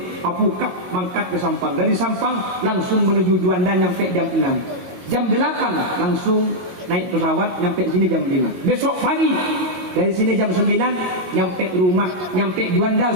apukap mangkat ke Sampang. Dari Sampang langsung menuju Juanda nyampe jam 6. Jam 8 langsung naik pesawat nyampe sini jam 5. Besok pagi dari sini jam 9 nyampe rumah, nyampe Juanda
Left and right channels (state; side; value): late; left; 22 ms